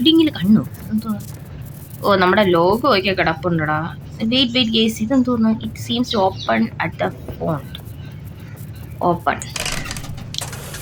കണ്ണു എന്തോ. നമ്മുടെ ലോഗോ ഒക്കെ കിടപ്പുണ്ടടാ. വെയിറ്റ് ഗൈസ്, ഇതെന്തോന്ന്. It seems to open at the front. Open.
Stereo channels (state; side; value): identical; both; correlation 1.00